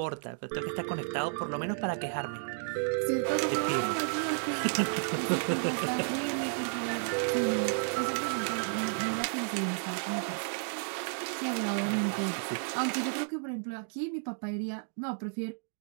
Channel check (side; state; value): left; silent; 56 dB below the other